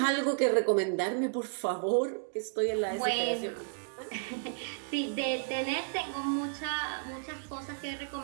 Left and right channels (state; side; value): silent; left; digital silence